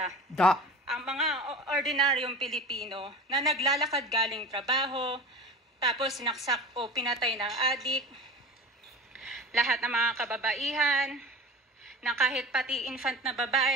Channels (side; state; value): both; normal; correlation 0.36